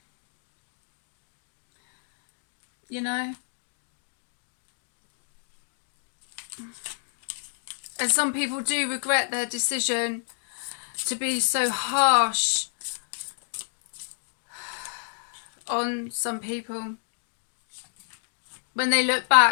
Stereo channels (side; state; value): right; silent; digital silence